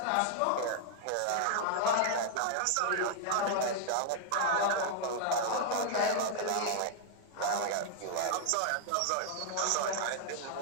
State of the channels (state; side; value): different; both; correlation -0.01